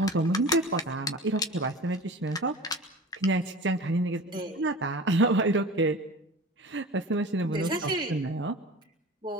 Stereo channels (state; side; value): normal; both; correlation 0.36